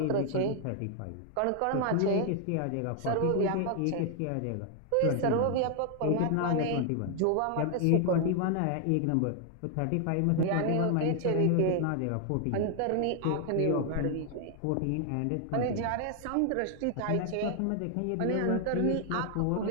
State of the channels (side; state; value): both; different; correlation 0.00